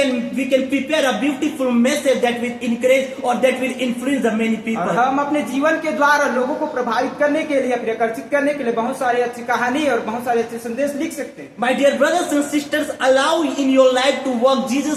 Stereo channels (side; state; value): both; identical; correlation 1.00